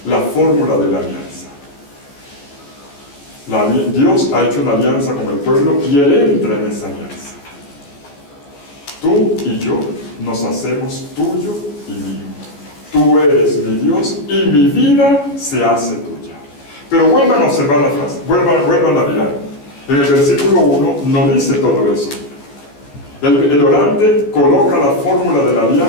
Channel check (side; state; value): right; late; 14 ms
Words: la fórmula de la alianza. Dios ha hecho una alianza con el pueblo y Él entra en esa alianza. Tú y yo nos hacemos tuyo y mío. Tú eres mi Dios y mi vida se hace tuya. Pero vuelvan a observar la frase, vuelvan a mirar. En el versículo 1 no dice todo eso. El orante coloca la fórmula de la